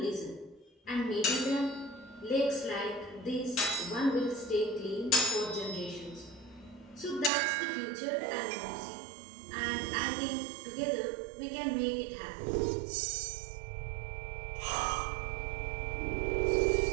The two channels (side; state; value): left; drops out; at 7.3 s